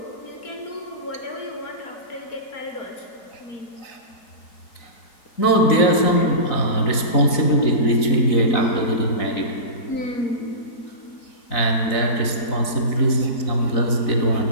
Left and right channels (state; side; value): late; right; 4.0 ms